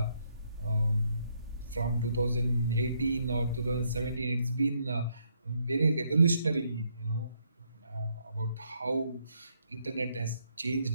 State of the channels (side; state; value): both; inverted; correlation -0.74